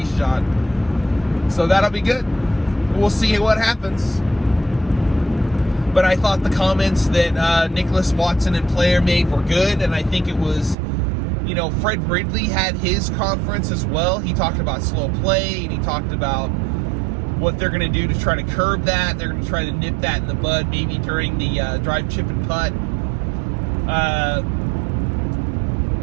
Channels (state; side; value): drops out; left; at 10.8 s